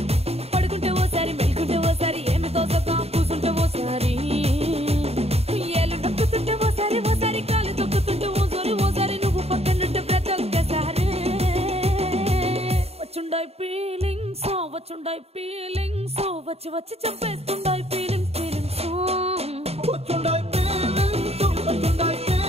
పడుకుంటే ఓసారి మెలుకుంటే ఓసారి ఏమి తోసక కూసుంటే ఓసారి ఏళ్ళు నొక్కుతుంటే ఓసారి ఓసారి కాలు తొక్కుతుంటే ఓసారి నువ్వు పక్కనుంటే ప్రతి ఒక్కసారి వచ్చుండాయి ఫీలింగ్స్ వచ్చి వచ్చి చంపేస్తుండాయి ఫీలింగ్స్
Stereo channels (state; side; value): late; left; 0.30 ms